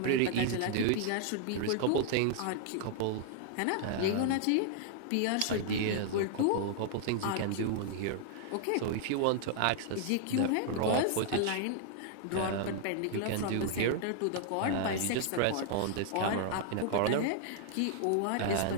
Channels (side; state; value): both; different; correlation -0.01